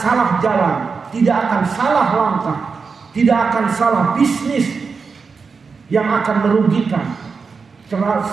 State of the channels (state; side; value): quieter; left; 5.1 dB